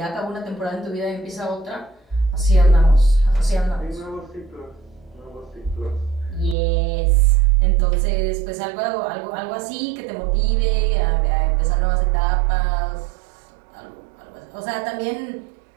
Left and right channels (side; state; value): left; drops out; at 6.6 s